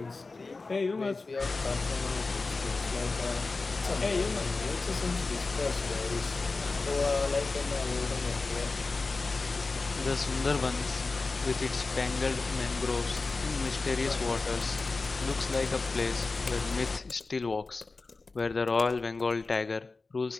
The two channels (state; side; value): quieter; right; 3.8 dB